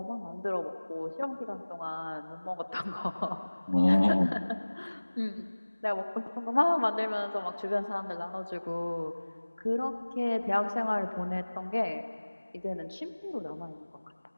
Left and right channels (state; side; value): inverted; both; correlation -1.00